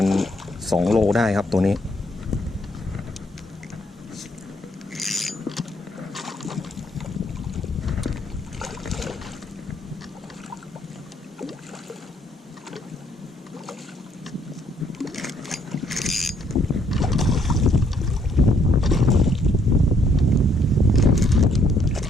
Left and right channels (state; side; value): normal; both; correlation 0.69